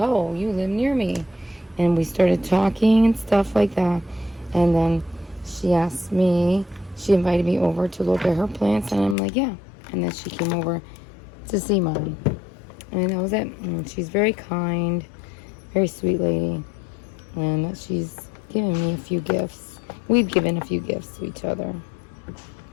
you live near me. And we started talking and stuff like that. And then she invited me over to look at her plants, and I'm like, yeah. And then she came over to see mine. And that was it. And she's very kind, very sweet lady. And she's given me a few gifts. We've given a few gifts to each other.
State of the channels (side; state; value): right; drops out; at 9.2 s